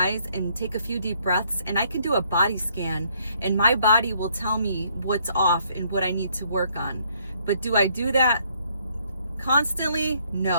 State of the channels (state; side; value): inverted; both; correlation -0.68